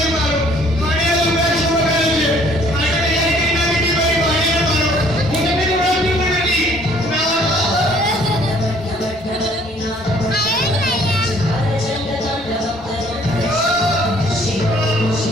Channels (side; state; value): both; normal; correlation 0.59